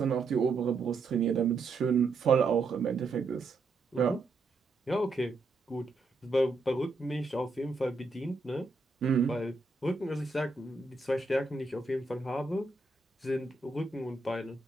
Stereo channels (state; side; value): quieter; left; 3.7 dB